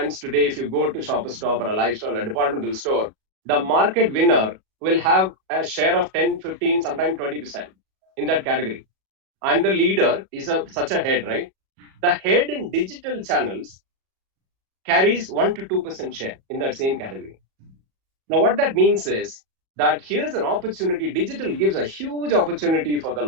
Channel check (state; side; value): late; left; 37 ms